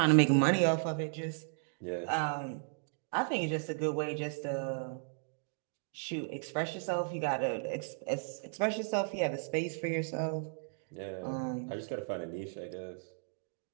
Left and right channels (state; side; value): silent; left; digital silence